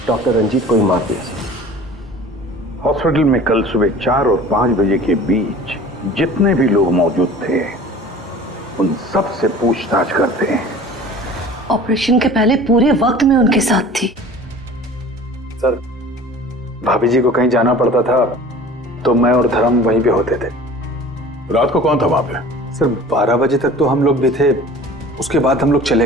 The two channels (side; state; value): both; normal; correlation 0.43